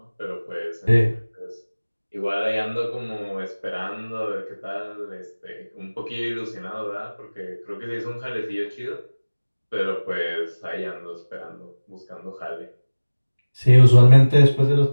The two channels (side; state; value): both; inverted; correlation -1.00